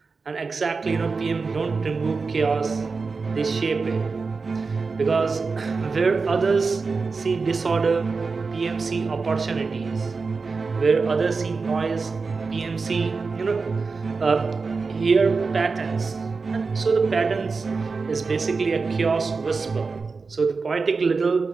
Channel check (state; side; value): quieter; left; 4.5 dB